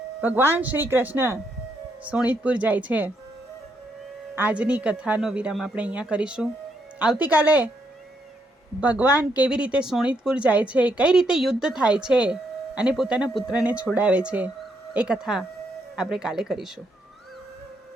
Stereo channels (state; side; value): normal; both; correlation 0.76